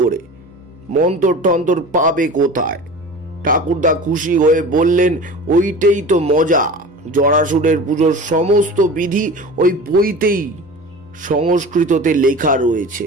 করে? মন্তর টন্তর পাবে কোথায়? ঠাকুরদা খুশি হয়ে বললেন, ওইটাই তো মজা। জরাসুরের পুজোর সমস্ত বিধি ওই বইতেই সংস্কৃততে লেখা রয়েছে।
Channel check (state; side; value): normal; both; correlation 0.36